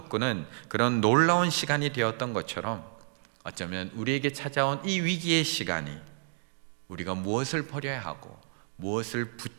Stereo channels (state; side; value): silent; left; digital silence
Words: 그런 놀라운 시간이 되었던 것처럼 어쩌면 우리에게 찾아온 이 위기의 시간이 우리가 무엇을 버려야 하고 무엇을